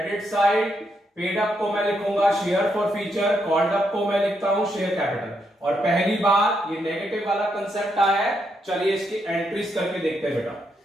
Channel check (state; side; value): normal; both; correlation 0.79